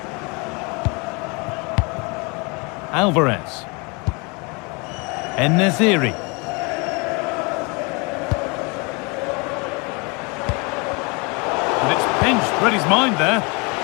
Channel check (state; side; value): quieter; right; 29.9 dB